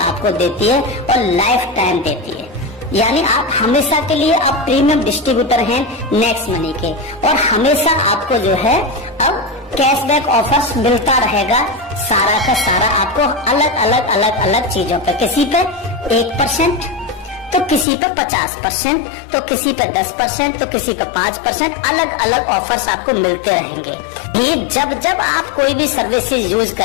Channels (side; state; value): right; drops out; at 17.9 s